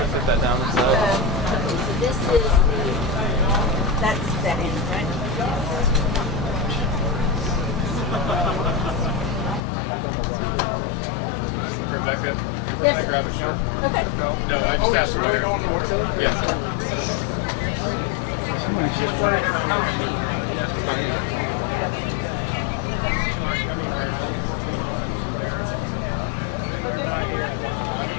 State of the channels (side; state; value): right; drops out; at 9.6 s